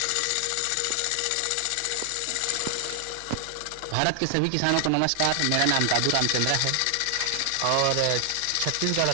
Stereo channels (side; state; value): both; different; correlation 0.00